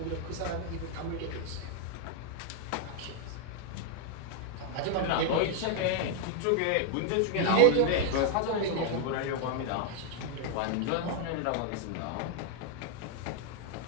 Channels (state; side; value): different; both; correlation 0.01